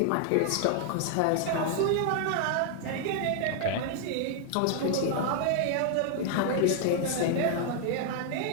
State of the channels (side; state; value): both; different; correlation 0.00